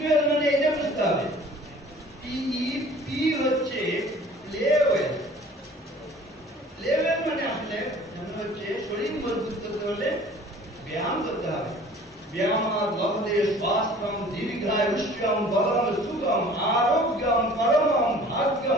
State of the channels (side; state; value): both; normal; correlation 0.48